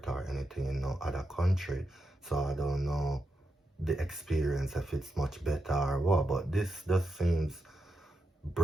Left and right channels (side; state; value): both; normal; correlation 0.86